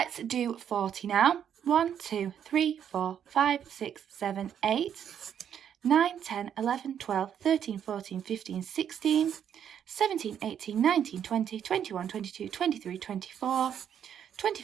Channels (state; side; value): quieter; left; 8.9 dB